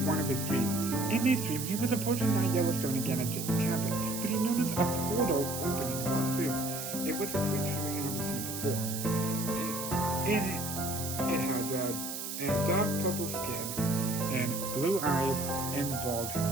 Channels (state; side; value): noise; right; hiss, 6 dB below the sound